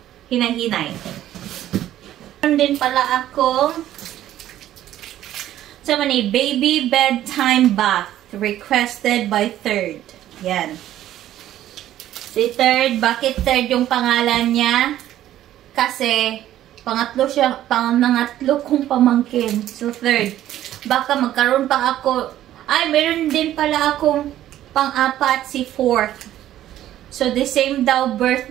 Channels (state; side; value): quieter; left; 12.8 dB